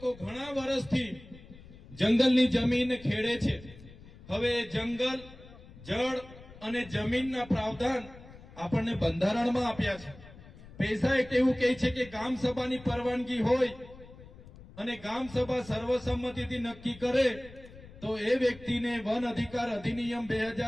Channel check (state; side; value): noise; left; rumble, 19 dB below the sound